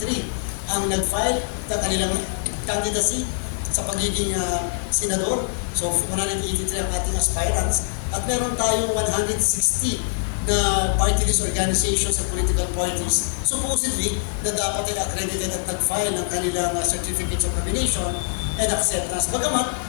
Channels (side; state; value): right; silent; digital silence